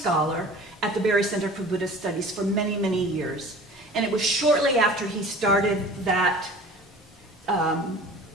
at the Barry Center for Buddhist Studies for many, many years. And it was shortly after he started that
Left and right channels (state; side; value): normal; both; correlation 0.43